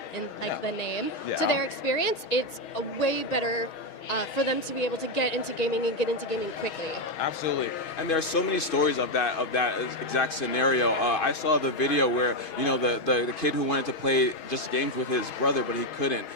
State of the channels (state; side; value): late; right; 6.3 ms